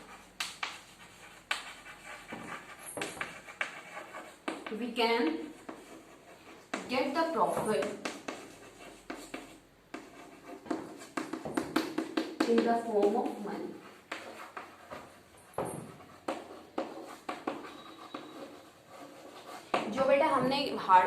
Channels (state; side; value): identical; both; correlation 1.00